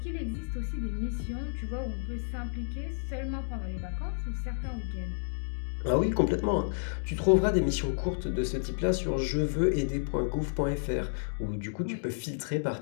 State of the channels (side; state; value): right; silent; digital silence